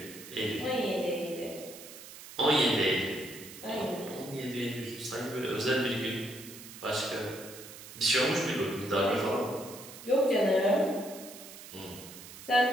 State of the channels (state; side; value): noise; right; hiss, 15 dB below the sound